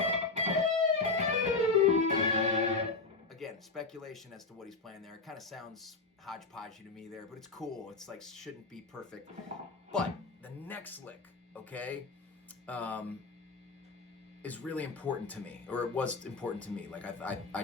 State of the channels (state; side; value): quieter; right; 3.9 dB